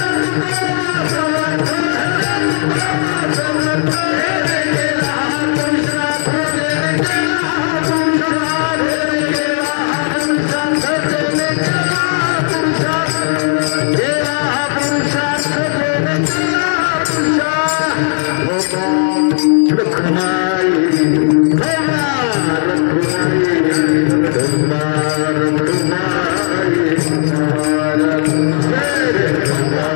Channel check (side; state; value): right; silent; 70 dB below the other